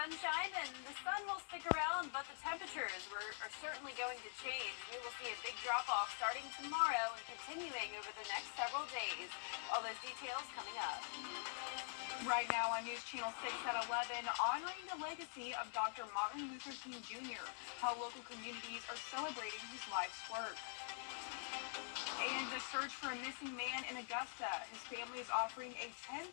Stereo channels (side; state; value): right; silent; digital silence